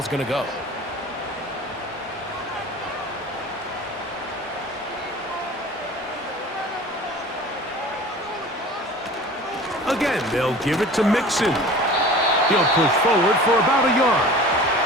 going to go. Again, they'll give it to Mixon. He'll push forward for about a yard.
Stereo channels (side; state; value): both; normal; correlation 0.41